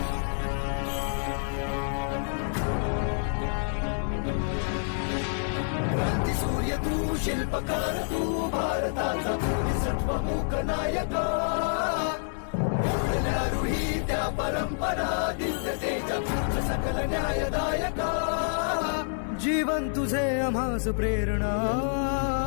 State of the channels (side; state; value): right; silent; 59 dB below the other